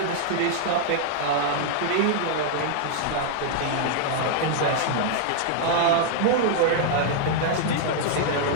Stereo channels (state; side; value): different; both; correlation -0.01